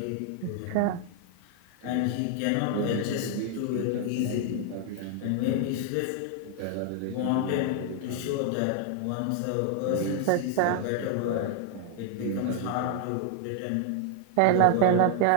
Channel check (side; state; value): both; different; correlation 0.00